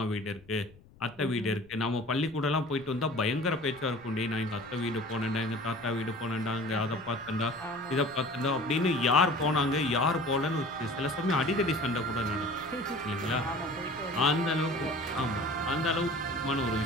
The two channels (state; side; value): noise; left; rumble, 25 dB below the sound